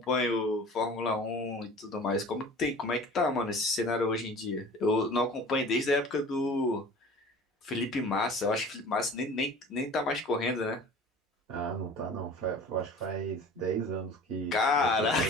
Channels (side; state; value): both; normal; correlation 0.42